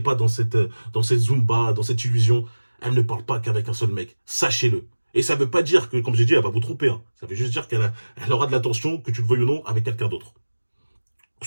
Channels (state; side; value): inverted; both; correlation -1.00